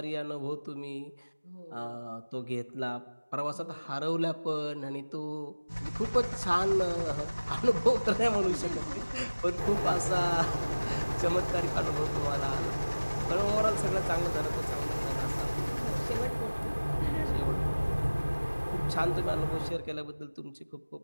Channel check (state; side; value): inverted; both; correlation -1.00